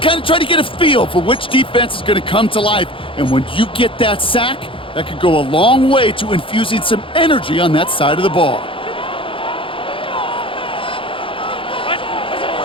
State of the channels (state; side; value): late; right; 0.25 ms